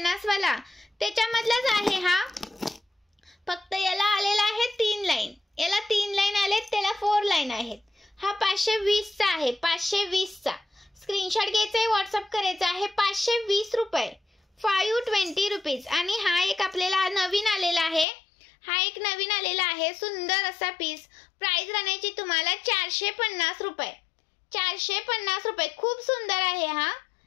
वाला, त्याच्यामधलाच आहे हा. फक्त याला आलेला आहे 3 लाईन. याला 3 लाईन आलेत, त्याला 4 लाईन आहेत. हा 520 चा आहे, 520 चा. स्क्रीनशॉट घ्यायचा आहे, व्हॉट्सअप करायचा आहे. 520 रुपये, 520 रुपीज. आणि हा एक आपल्याला नवीन आलेला आहे. हा एक नवीन आलेला आहे, सुंदर असा पीस. प्राइस राहण्याची तुम्हाला 450 रुपये, 450 रुपये. खूप सुंदर आहे हा.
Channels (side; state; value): right; drops out; at 18.1 s